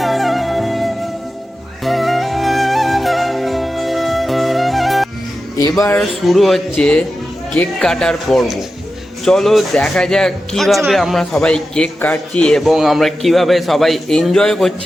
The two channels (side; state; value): both; normal; correlation 0.92